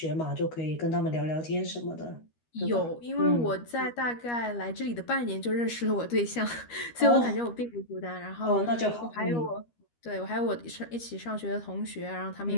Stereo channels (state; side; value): late; right; 13 ms